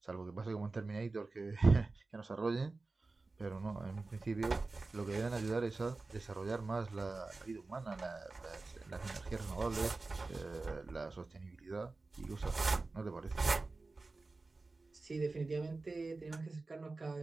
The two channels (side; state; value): left; quieter; 3.6 dB